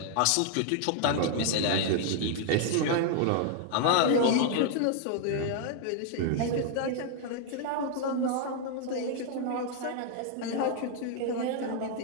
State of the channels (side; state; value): both; different; correlation 0.00